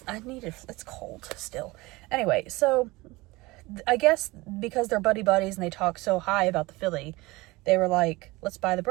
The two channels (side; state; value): left; quieter; 21.7 dB